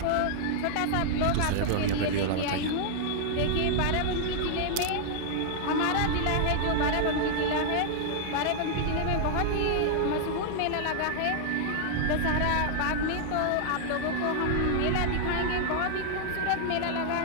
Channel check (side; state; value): both; different; correlation -0.01